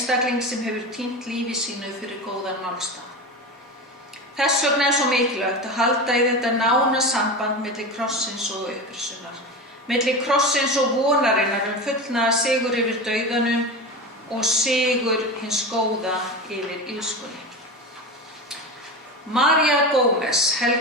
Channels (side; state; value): both; normal; correlation 0.25